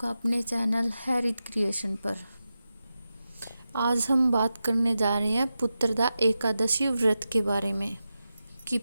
अपने चैनल हैरित क्रिएशन पर। आज हम बात करने जा रहे हैं पुत्रदा एकादशी व्रत के बारे में कि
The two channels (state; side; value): inverted; both; correlation -0.91